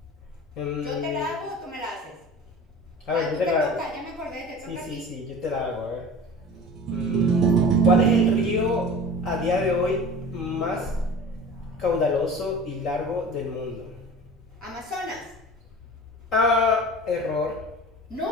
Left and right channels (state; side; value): normal; both; correlation 0.38